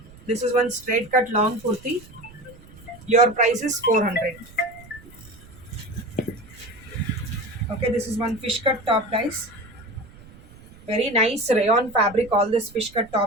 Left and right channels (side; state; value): right; noise; rumble, 21 dB below the sound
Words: This is one straight cut long kurti. Your price is 400. Okay, this is one fish cut top, guys. Very nice rayon fabric. All this fish cut